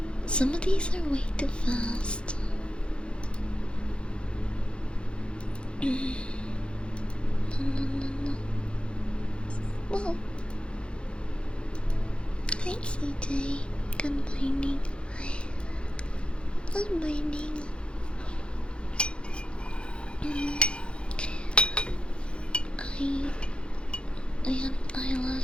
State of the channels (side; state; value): right; late; 0.056 ms